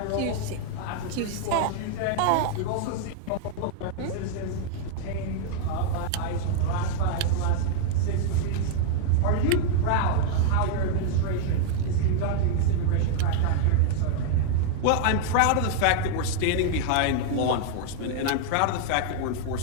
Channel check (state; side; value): different; both; correlation 0.00